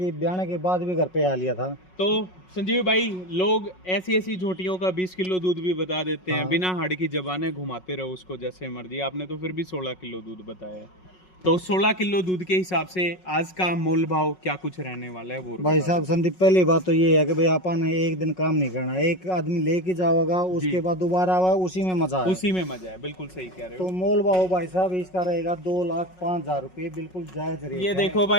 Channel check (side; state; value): right; late; 5.4 ms